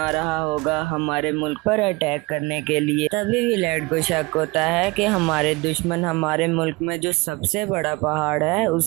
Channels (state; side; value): quieter; left; 24.1 dB